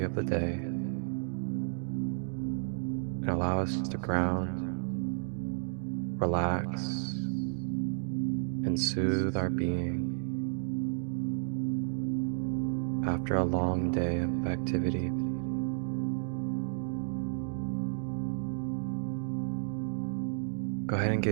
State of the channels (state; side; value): silent; left; digital silence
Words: of the day, and allow us to ground, relax, and soothe our being after a long day of activity. Go ahead and